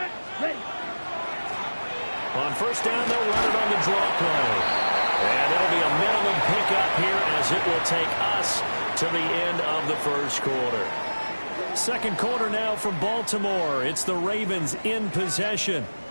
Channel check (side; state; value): both; inverted; correlation -1.00